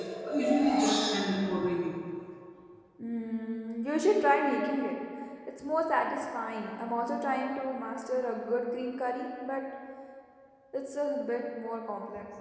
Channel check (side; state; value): both; identical; correlation 1.00